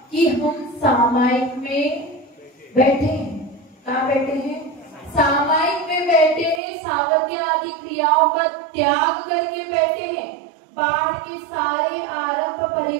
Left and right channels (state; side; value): drops out; left; at 6.6 s